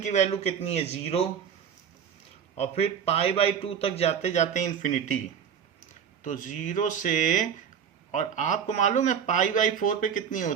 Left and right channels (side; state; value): left; quieter; 7.8 dB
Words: की वैल्यू कितनी है, 0, और फिर π/2 तक जाते जाते इन्फिनिटी, तो 0 से, और आपको मालूम है π/4 पे कितनी